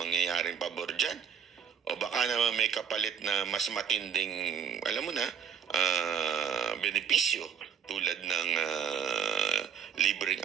pabor dyan. O baka naman may kapalit na mas matinding, alam mo na, benepisyo tulad ng libreng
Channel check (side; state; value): left; quieter; 7.7 dB